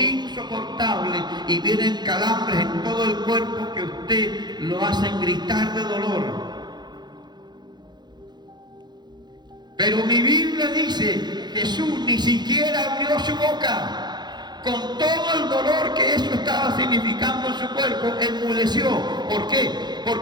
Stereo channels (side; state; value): left; late; 0.21 ms